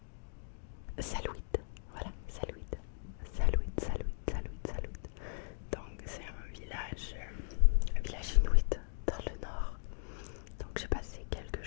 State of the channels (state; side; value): silent; right; digital silence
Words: Salouit. Voilà, Salouit. Salouit. Donc c'est un village inuit dans le nord. Donc j'ai passé quelques